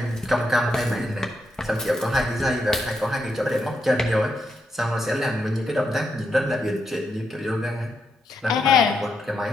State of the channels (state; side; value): normal; both; correlation 0.81